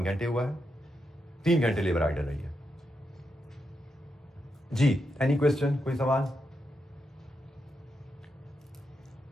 घंटे हुआ है, 3 घंटे लेबर आइडल रही है। जी, एनी क्वेश्चन, कोई सवाल?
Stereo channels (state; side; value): normal; both; correlation 0.84